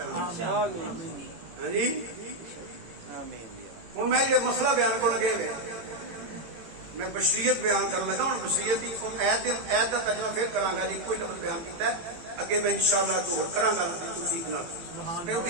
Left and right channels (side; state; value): left; late; 18 ms